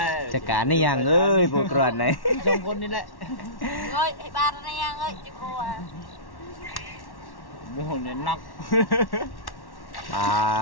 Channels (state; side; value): late; right; 1.1 ms